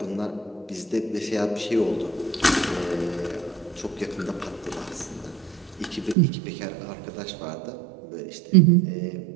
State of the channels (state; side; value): drops out; left; at 6.2 s